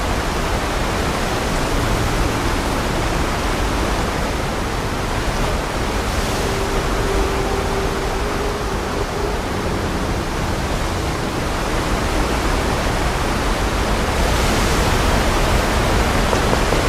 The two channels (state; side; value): identical; both; correlation 1.00